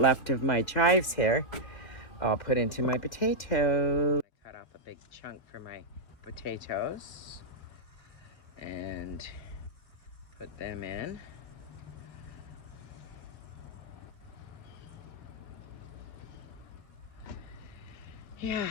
of my chives here, I'll put into my potatoes. I cut off a big chunk for my potatoes and put them in. Yeah,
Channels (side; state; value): right; late; 1.9 ms